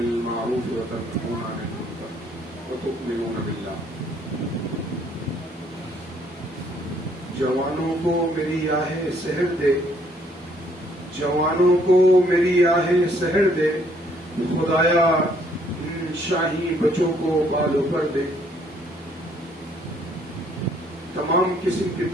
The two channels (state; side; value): normal; both; correlation 0.65